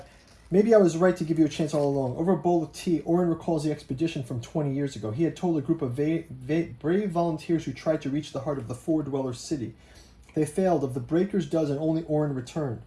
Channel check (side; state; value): both; identical; correlation 1.00